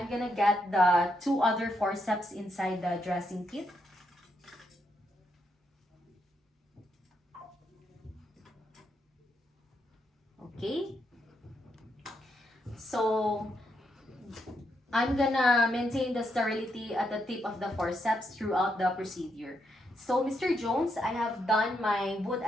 gonna get the 2 other forceps inside the dressing kit. Okay, so I'm gonna maintain the sterility at the tip of the forceps throughout the procedure. So Mr. Jones, I have done my wound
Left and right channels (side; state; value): both; normal; correlation 0.79